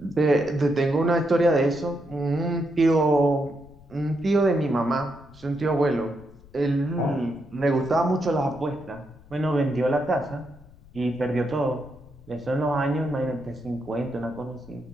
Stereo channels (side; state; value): left; noise; rumble, 23 dB below the sound